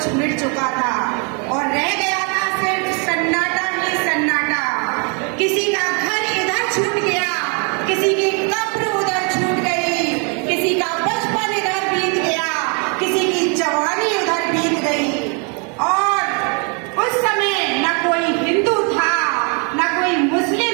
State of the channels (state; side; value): quieter; left; 35.7 dB